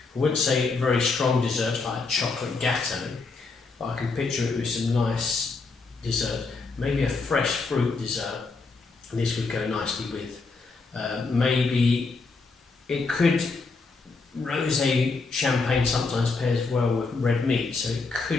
I wouldn't say very strong desserts like a chocolate gâteau, but I can picture it with some nice dessert. Maybe a fresh fruit dessert, and this would go nicely with. Maybe it could, rosé champagne sometimes pairs well with red meat, so it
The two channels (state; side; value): quieter; right; 4.1 dB